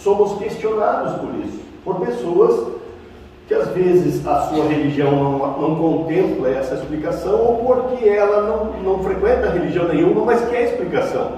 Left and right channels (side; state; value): both; identical; correlation 1.00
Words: somos questionados por isso, por pessoas que às vezes a sua religião não contempla essa explicação, ou porque ela não frequenta religião nenhuma, mas quer